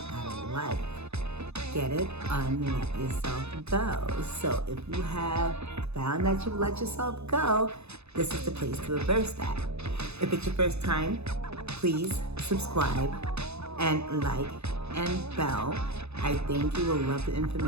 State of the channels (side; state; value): left; late; 0.80 ms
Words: out of life. Get it? Let yourself go. So if you have found that you've let yourself go, this is the place to reverse that. If it's your first time, please subscribe and like and bell. I think you will love the